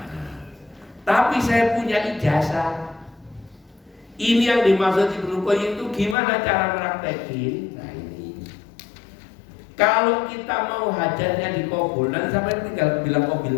Tapi saya punya ijazah. Ini yang dimaksud Ibnu Qayyim itu gimana cara praktekin? Nah ini. Kalau kita mau hajatnya dikabul, nanti sampai tinggal bilang qabil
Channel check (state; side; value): drops out; right; at 6.2 s